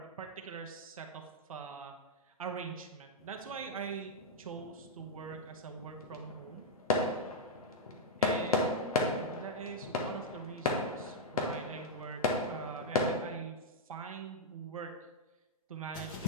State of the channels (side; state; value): both; normal; correlation -0.04